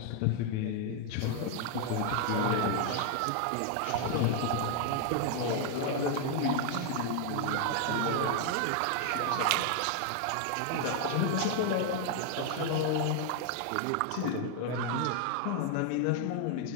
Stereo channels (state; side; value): different; both; correlation 0.00